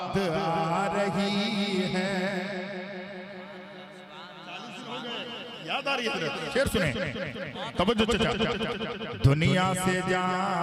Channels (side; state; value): both; identical; correlation 1.00